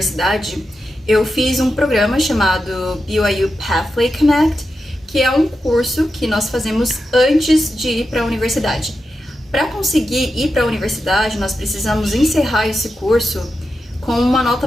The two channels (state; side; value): normal; both; correlation 0.89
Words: eu fiz um programa chamado BYU Pathway Connect, que é um curso que nós fazemos antes de ir para a universidade. Para conseguir ir para a universidade, nós precisamos encerrar esse curso com uma nota